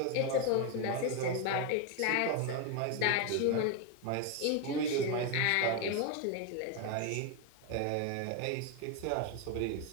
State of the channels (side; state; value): both; different; correlation 0.01